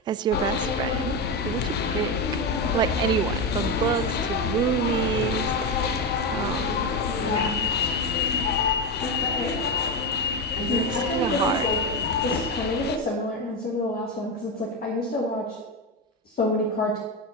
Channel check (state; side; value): normal; both; correlation 0.13